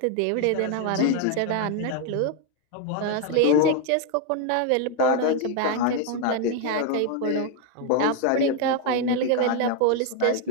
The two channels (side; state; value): both; different; correlation 0.00